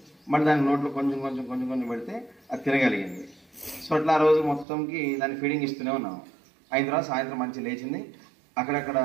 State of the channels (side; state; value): left; drops out; at 4.7 s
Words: మళ్ళీ దాని నోట్లో కొంచెం కొంచెం కొంచెం కొంచెం పెడితే అది తినగలిగింది. సో అట్లా ఆ రోజు మొత్తంకి దాన్ని ఫీడింగ్ ఇస్తూనే ఉన్నాం. అయిన తర్వాత సాయంత్రం మంచి లేచింది, అక్కడక్కడ